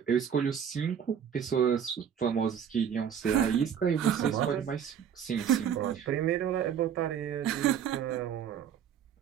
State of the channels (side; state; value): left; quieter; 8.3 dB